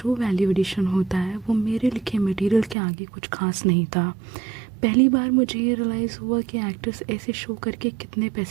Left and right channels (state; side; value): drops out; left; at 2.8 s